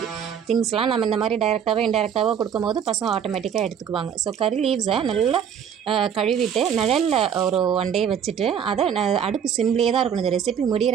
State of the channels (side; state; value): left; quieter; 8.1 dB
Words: திங்ஸ்லாம் நம்ம இந்த மாதிரி டைரெக்டாகவோ இன்டைரெக்டாகவோ கொடுக்கும்போது பசங்க ஆட்டோமேட்டிக்காக எடுத்துக்குவாங்க. ஸோ கறி லீவ்ஸை நல்லா கழுவிட்டு நிழலில் ஒரு 1 டே வச்சுட்டு அதை அடுப்பு சிம்லேயே தான் இருக்கணும். இந்த ரெசிபி முடிகிற